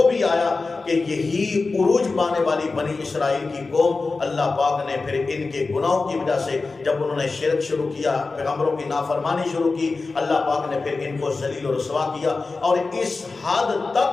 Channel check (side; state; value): right; quieter; 3.9 dB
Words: بھی آیا کہ یہی عروج پانے والی بنی اسرائیل کی قوم، اللہ پاک نے پھر ان کے گناہوں کی وجہ سے جب انہوں نے شرک شروع کیا، پیغمبروں کی نافرمانی شروع کی، اللہ پاک نے پھر ان کو ذلیل و رسوا کیا، اور اس حد